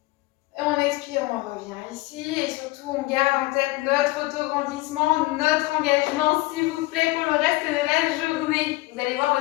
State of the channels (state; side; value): quieter; right; 20.8 dB